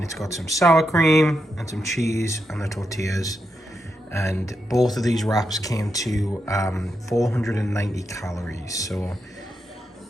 it's got some sour cream and some cheese and the tortillas. And both of these wraps came to 490 calories. So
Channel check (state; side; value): normal; both; correlation 0.84